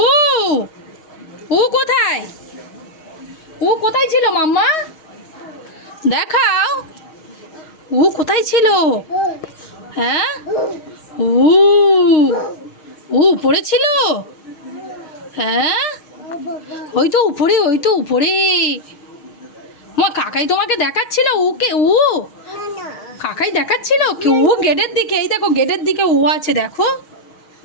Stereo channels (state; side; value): late; right; 6.4 ms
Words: ও কোথায়? ও কোথায় ছিল মাম্মা? দেখাও, ও কোথায় ছিল? হ্যাঁ, ও ও উপরে ছিল। হ্যাঁ, ওই তো উপরে, ওই তো উপরে। মা কাকাই তোমাকে দেখাচ্ছিল। ওকে, ও কাকাই দেখাচ্ছিল কি? ও গেটের দিকে, এই দেখো গেটের দিকে ও আছে, দেখো।